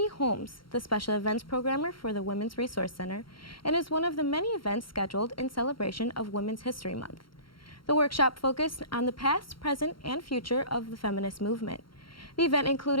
Holmes, the Special Events Programmer for the Women's Resource Center, and is one of the many events scheduled in celebration of Women's History Month. The workshop focused on the past, present, and future of the feminist movement. The event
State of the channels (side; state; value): right; late; 0.73 ms